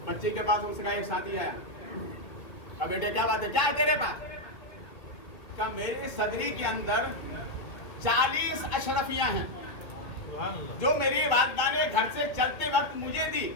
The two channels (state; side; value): late; right; 2.1 ms